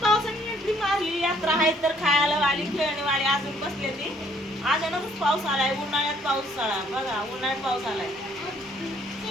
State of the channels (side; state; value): both; normal; correlation 0.64